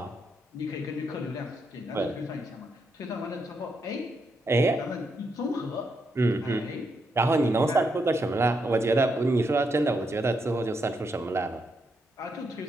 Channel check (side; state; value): both; normal; correlation 0.80